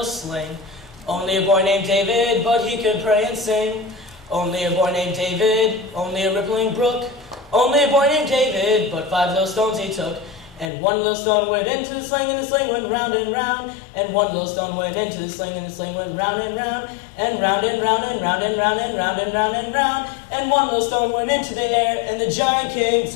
sling. Only a boy named David, but he could pray and sing. Only a boy named David, only a rippling brook. Only a boy named David, but 5 little stones he took. And 1 little stone went into the sling, and the sling went round and round. And 1 little stone went into the sling, and the sling went round and round. And round and round and round and round and round and round and round. And 1 little stone went into the air, and the giant came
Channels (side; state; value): right; drops out; at 10.7 s